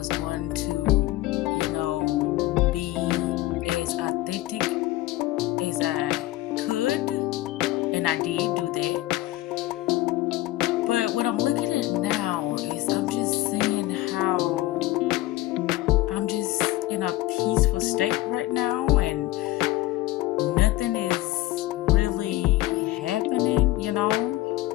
going to, be as authentic as I could, and I did do that. But what I'm looking at now is I'm just seeing how I'm just in a peaceful state right now, and nothing is really happening,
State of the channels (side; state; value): right; quieter; 17.3 dB